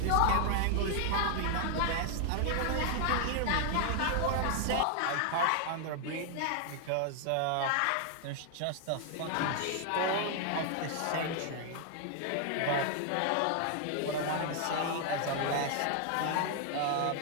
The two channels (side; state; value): both; different; correlation 0.00